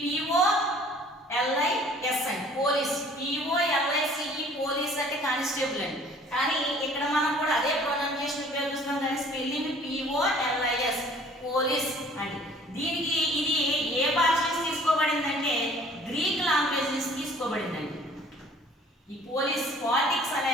POLIS అని పోలీస్. POLICE పోలీస్ అంటే కానిస్టేబుల్ అండి. కానీ ఇక్కడ మనం కూడా అదే ప్రొనౌన్సియేషన్ ఉపయోగిస్తున్నాం, కానీ స్పెల్లింగ్ POLIS పోలీస్ అండి. దీనికి ఇది ఏ భాష నుంచి తీసుకోబడిందంటే గ్రీక్ లాంగ్వేజ్ నుంచి తీసుకోబడిందండి. ఈ పాలిటిక్స్ అనే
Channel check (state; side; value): normal; both; correlation 0.53